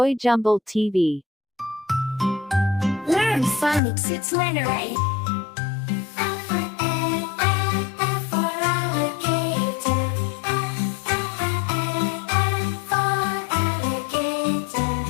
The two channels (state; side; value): drops out; right; at 3.8 s